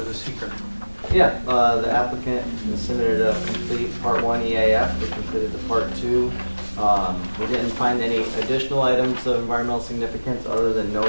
the seeker? Yeah, the applicant submitted a complete part 1 EAF, which included the part 2. We didn't find any additional items of environmental significance other than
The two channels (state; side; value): inverted; both; correlation -1.00